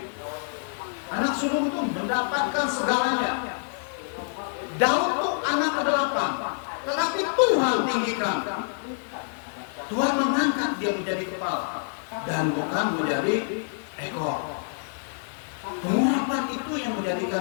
Anak sulung itu mendapatkan segalanya. Daud itu anak ke-8, tetapi Tuhan tinggikan. Tuhan mengangkat dia menjadi kepala dan bukan menjadi ekor. Pengurapan itu yang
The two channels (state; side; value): silent; right; digital silence